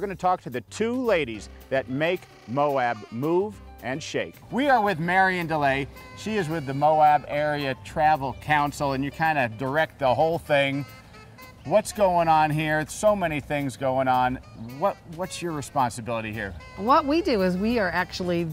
to talk to the two ladies that make Moab move and shake. We are with Marion DeLay. She is with the Moab Area Travel Council, and you kind of direct the whole thing. What's going on here? So many things going on. What's your responsibility here? What we do is we are actually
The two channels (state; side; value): identical; both; correlation 1.00